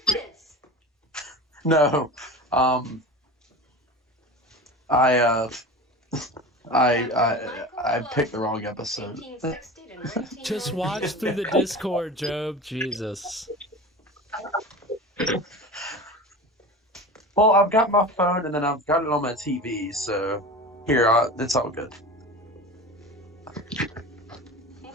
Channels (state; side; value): normal; both; correlation 0.32